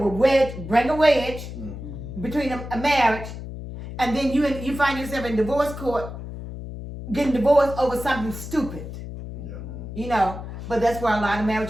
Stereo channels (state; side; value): noise; left; hum, 10 dB below the sound